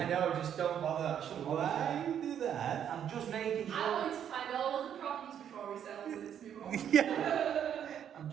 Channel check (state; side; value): quieter; left; 9.2 dB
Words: know, just don't bother. I shouldn't bother. Why you do that? I'm just making sure. I want to find all of the problems before we settle this move on. Yeah. I'm